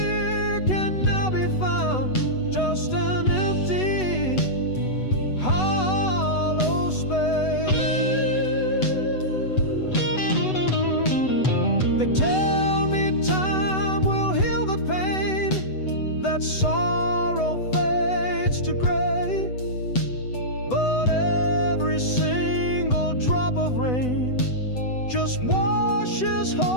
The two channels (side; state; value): right; late; 8.0 ms